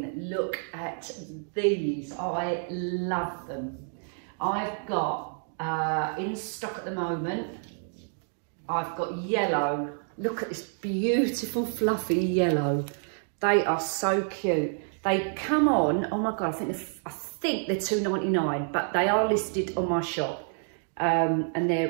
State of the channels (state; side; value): silent; left; 59 dB below the other